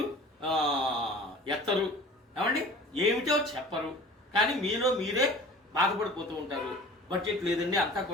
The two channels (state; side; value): normal; both; correlation 0.43